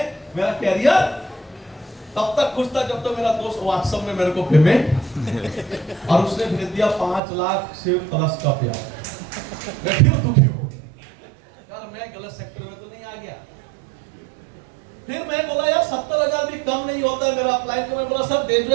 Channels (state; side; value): drops out; left; at 7.2 s